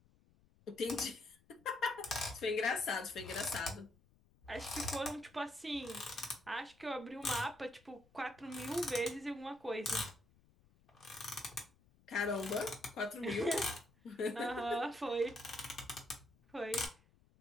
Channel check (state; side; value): noise; left; rumble, 30 dB below the sound